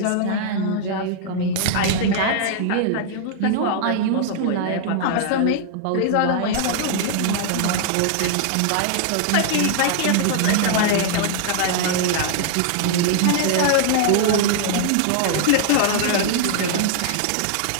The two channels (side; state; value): both; different; correlation -0.01